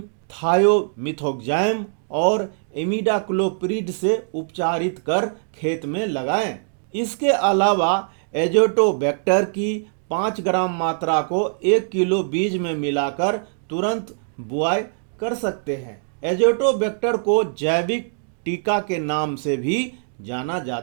थायोमिथोक्साम और इमिडाक्लोप्रिड से उपचारित कर खेत में लगाएं। इसके अलावा एजोटोबैक्टर की 5 ग्राम मात्रा को 1 किलो बीज में मिलाकर तुरंत बुआई कर सकते हैं। एजोटोबैक्टर को जैविक टीका के नाम से भी जाना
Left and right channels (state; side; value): silent; left; digital silence